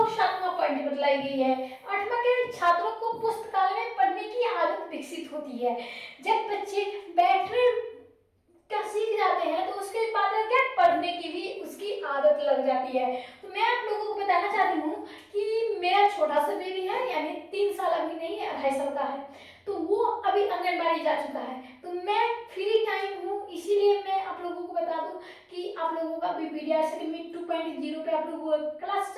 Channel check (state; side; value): identical; both; correlation 1.00